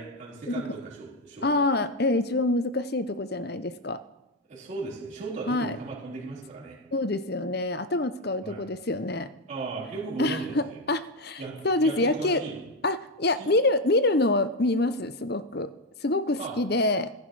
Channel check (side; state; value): both; normal; correlation 0.09